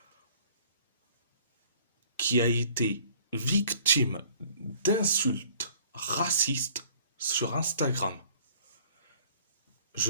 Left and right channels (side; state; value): both; inverted; correlation -0.54